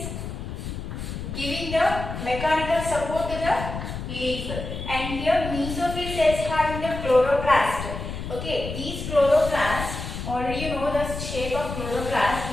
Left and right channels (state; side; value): noise; left; rumble, 7 dB below the sound